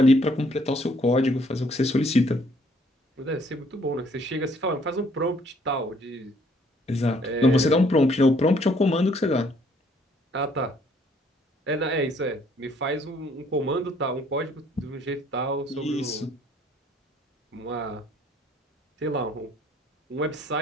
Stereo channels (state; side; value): normal; both; correlation 0.63